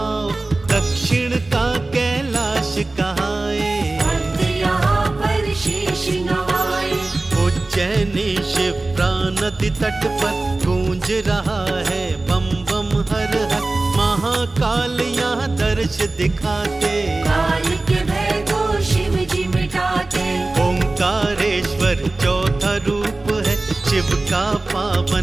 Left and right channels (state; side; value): quieter; left; 3.1 dB